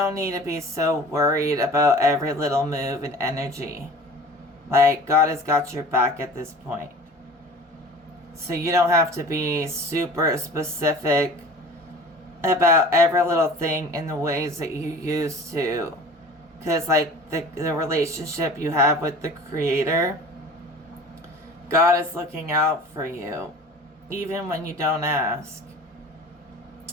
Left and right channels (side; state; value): both; normal; correlation 0.42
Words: need to be so worried about every little move and energy. Like, God has got your back at this point. So you don't have to be super specific about every little thing in the ways that you used to. Because, like, the relationship you have with the Creator, God is looking out for you, even when you don't ask.